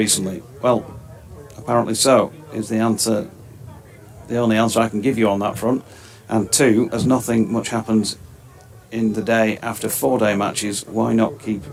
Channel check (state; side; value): identical; both; correlation 1.00